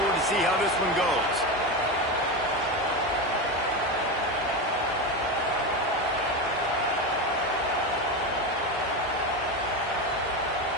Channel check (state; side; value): normal; both; correlation 0.17